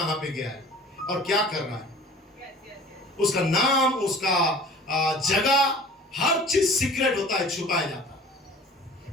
पे गया है और क्या कर रहा है। उसका नाम, उसका जगह, हर चीज सीक्रेट होता है, छुपाया जाता है।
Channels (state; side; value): normal; both; correlation 0.45